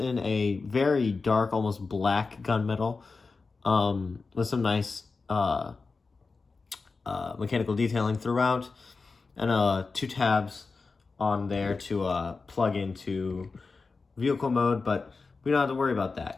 a very dark, almost black gunmetal, with some nice mechanical detailing throughout, and two tabs on there to plug into vehicle mode, but we don't have to worry about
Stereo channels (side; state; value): right; quieter; 4.2 dB